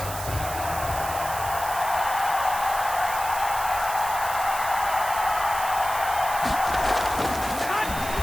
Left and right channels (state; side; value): noise; right; hiss, 9 dB below the sound